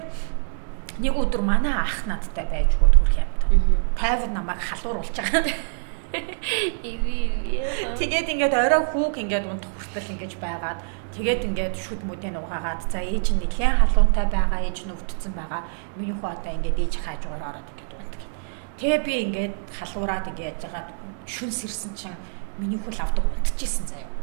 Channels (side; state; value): left; silent; 62 dB below the other